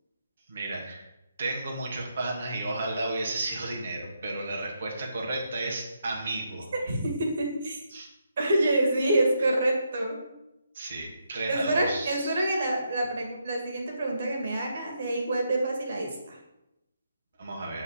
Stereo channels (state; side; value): inverted; both; correlation -0.80